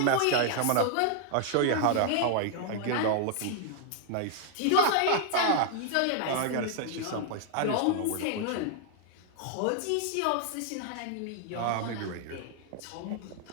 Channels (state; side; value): different; both; correlation 0.00